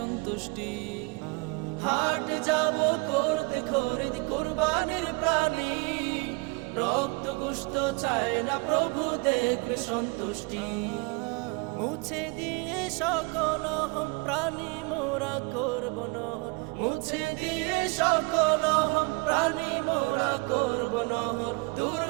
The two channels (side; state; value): left; quieter; 28.5 dB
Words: হাট যাব করতে খরিদ কোরবানির প্রাণী রক্ত গুস্ত চায় না প্রভু দেখবে সন্তুষ্টি মুছে দিয়ে সকল হম প্রাণী মোরা করব নহর মুছে দিয়ে সকল হম প্রাণী মোরা করব নহর দূর